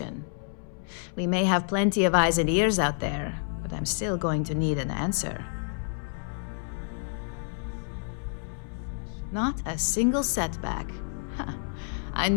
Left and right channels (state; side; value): silent; right; 59 dB below the other